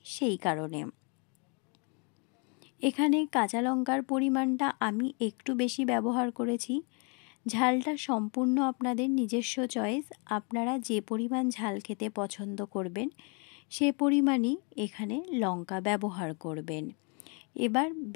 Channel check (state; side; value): quieter; right; 35.7 dB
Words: সেই কারণে। এখানে কাঁচা লঙ্কার পরিমাণটা আমি একটু বেশি ব্যবহার করেছি। ঝালটা সম্পূর্ণ আপনাদের নিজস্ব চয়েস, আপনারা যে পরিমাণ ঝাল খেতে পছন্দ করবেন সে পরিমাণই এখানে লঙ্কা ব্যবহার করবেন। এবার